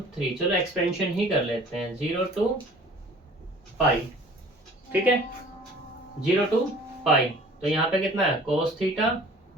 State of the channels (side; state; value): both; normal; correlation 0.49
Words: चलो एक्सपेंशन ही कर लेते हैं 0 टू पाई। ठीक है, 0 to पाई, तो यहाँ पे कितना है cos theta